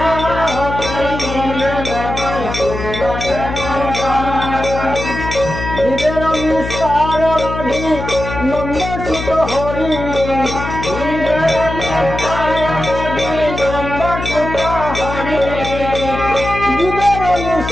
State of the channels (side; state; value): left; noise; hum, 7 dB below the sound